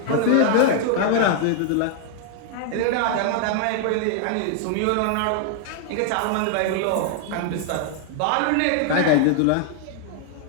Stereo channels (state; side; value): different; both; correlation 0.00